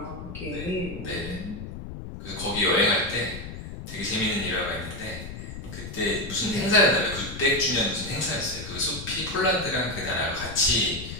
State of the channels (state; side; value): noise; left; rumble, 9 dB below the sound